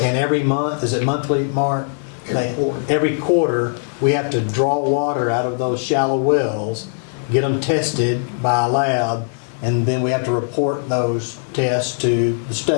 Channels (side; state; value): right; silent; digital silence